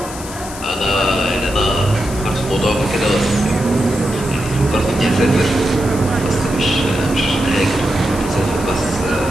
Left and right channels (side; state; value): left; noise; hiss, 13 dB below the sound